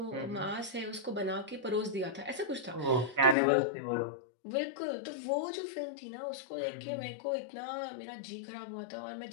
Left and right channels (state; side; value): drops out; right; at 3.4 s